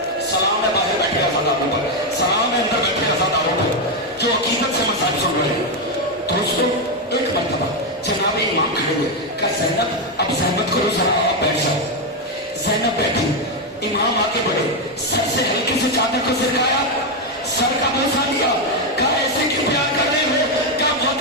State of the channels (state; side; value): normal; both; correlation 0.05